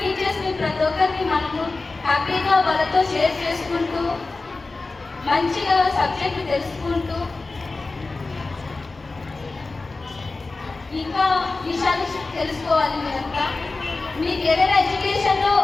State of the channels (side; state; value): right; quieter; 3.6 dB